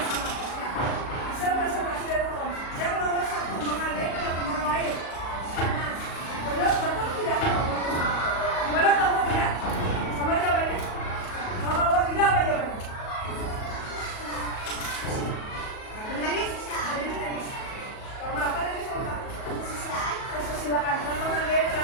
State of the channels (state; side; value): late; right; 37 ms